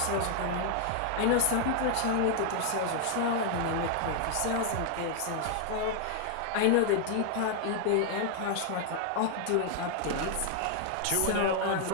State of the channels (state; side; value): different; both; correlation 0.00